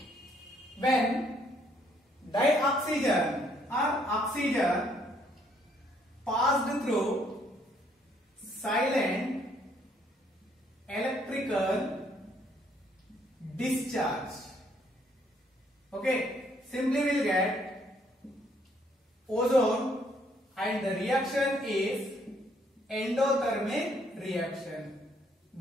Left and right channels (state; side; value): normal; both; correlation 0.68